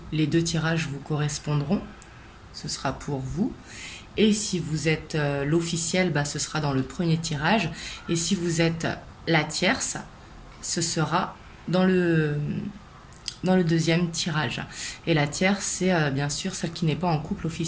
les deux tirages vous correspondront. Ce sera pour vous. Et si vous êtes l'officiel, ce sera dans le premier tirage. Et si vous êtes la tierce, ce sera dans le deuxième tirage. Et la tierce, c'est bien sûr celle qui n'est pas en couple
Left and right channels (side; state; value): both; identical; correlation 1.00